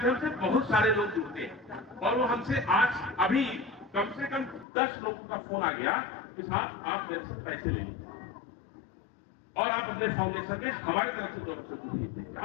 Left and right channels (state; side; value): drops out; right; at 4.7 s